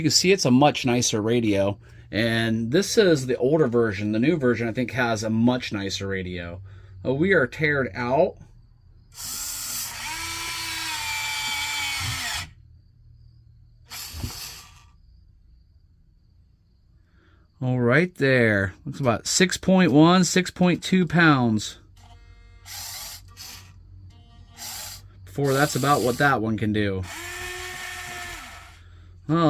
can see, it's a much nicer radio. And this is the older version. The new version, I think, has a much nicer radio. We are teared out. All right there. Looks about 6.1, 6.2 pounds. Before that's about what that one can do. Well,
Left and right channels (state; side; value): identical; both; correlation 1.00